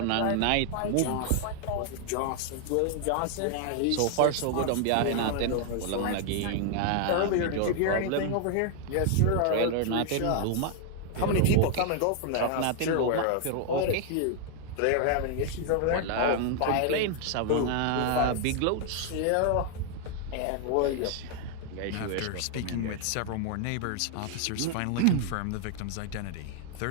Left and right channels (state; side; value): different; both; correlation 0.00